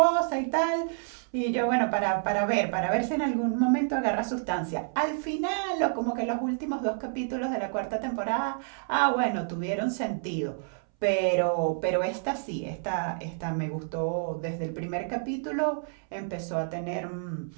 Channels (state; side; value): silent; left; 59 dB below the other